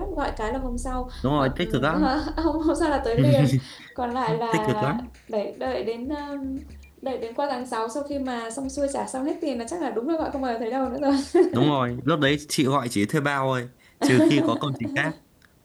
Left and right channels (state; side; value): identical; both; correlation 1.00